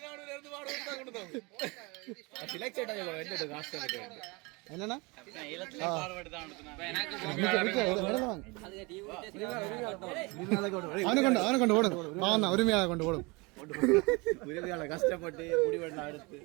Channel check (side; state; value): left; quieter; 26.8 dB